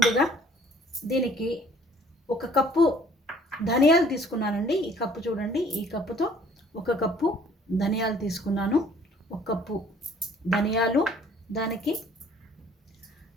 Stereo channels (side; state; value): both; normal; correlation 0.57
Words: దీనికి 1 కప్పు ధనియాలు తీసుకున్నానండి. ఈ కప్పు చూడండి, ఈ కప్పుతో 1 కప్పు ధనియాలు తీసుకున్నాను. 1 కప్పు ధనియాలు, దానికి